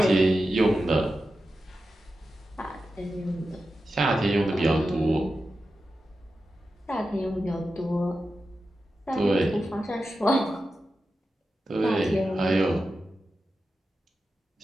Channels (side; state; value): both; normal; correlation 0.91